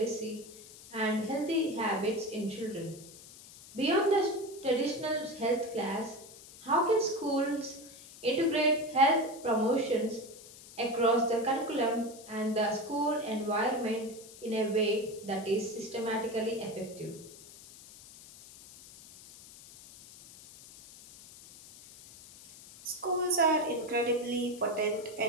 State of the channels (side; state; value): left; noise; hiss, 19 dB below the sound